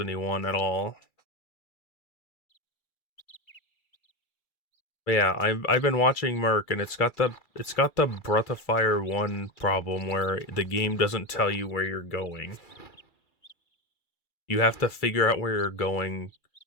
1 at all. But yeah, I've been watching Merc, and it's got the Breath of Fire 1 problem where the game doesn't tell you where you're going. You have to figure out where you're going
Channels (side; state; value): right; late; 2.3 ms